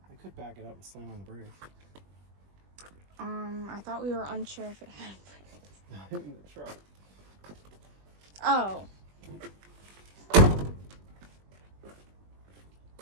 I could back it up and slam on the brake. I thought we were unsure if it had brakes. In the truck. Oh. Only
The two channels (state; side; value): late; left; 21 ms